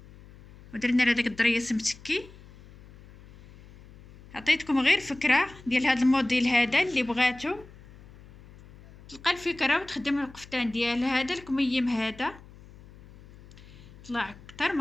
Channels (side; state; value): left; noise; hum, 21 dB below the sound